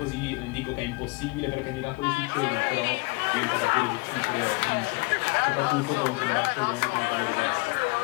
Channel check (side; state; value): right; quieter; 27.0 dB